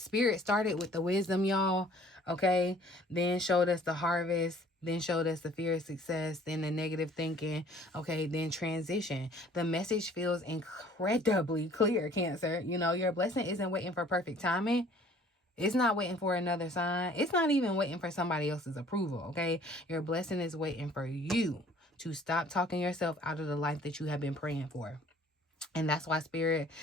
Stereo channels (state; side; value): normal; both; correlation 0.54